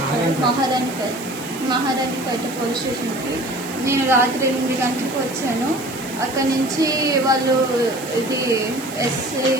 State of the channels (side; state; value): right; noise; hiss, 16 dB below the sound